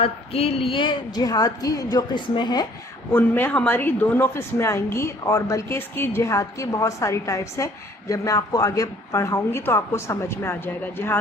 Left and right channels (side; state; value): both; normal; correlation 0.57